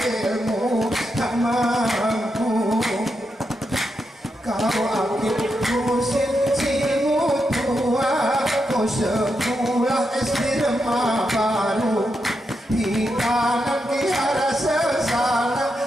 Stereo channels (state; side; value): normal; both; correlation 0.85